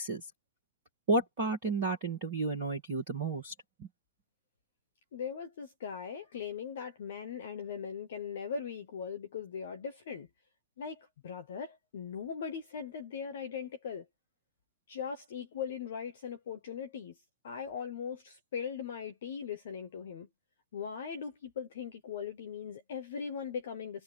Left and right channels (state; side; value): inverted; both; correlation -0.34